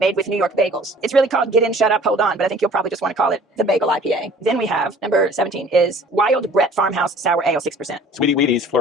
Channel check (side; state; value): both; normal; correlation 0.50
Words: with New York bagels. It's really called Get In, Shut Up, Hold On, but I think you'll probably just want to call it the Bagel IPA. Then we have, number 17, is Wild Brett Farmhouse Sour Ale, 6%. Sweetie Wheatie's